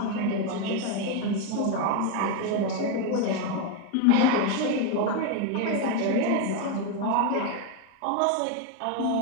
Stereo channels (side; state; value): both; different; correlation 0.02